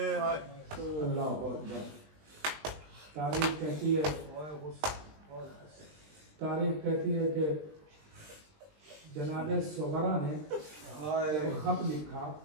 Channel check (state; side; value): late; left; 20 ms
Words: अल्लाह अकबर। तारीख कहती है कि जनाबे सुगरा ने खत लिखा